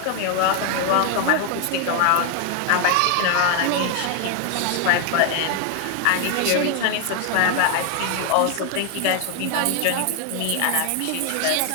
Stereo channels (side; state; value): both; different; correlation 0.00